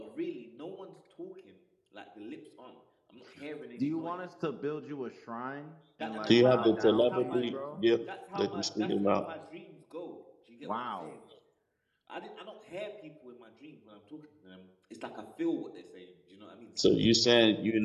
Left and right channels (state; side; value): identical; both; correlation 1.00